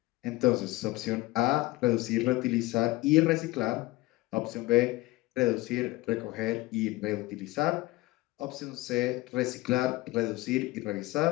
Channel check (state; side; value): quieter; right; 20.0 dB